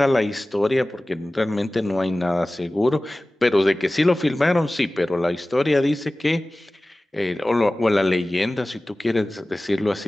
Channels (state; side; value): normal; both; correlation 0.97